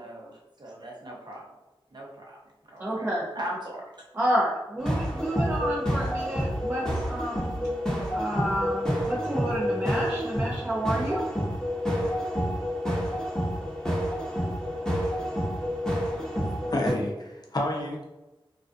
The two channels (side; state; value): both; normal; correlation 0.86